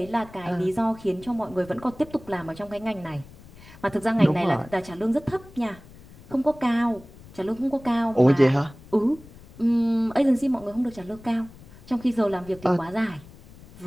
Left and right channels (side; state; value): left; noise; rumble, 21 dB below the sound